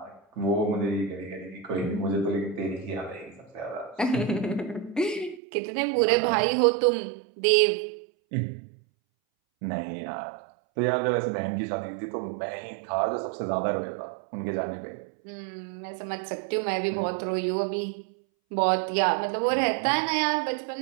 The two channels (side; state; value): left; drops out; at 5.4 s